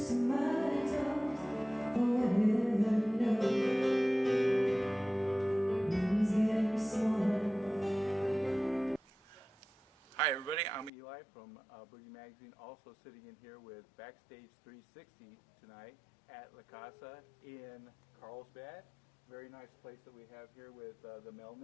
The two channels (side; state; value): right; drops out; at 10.9 s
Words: of my toes. Oh, heaven knows, room's getting smaller. Hi everybody, I'm Eli from Boogie Magazine, also sitting in here with BackStage360 tonight at La Casa in Carlsbad. Very nice place that we have here with the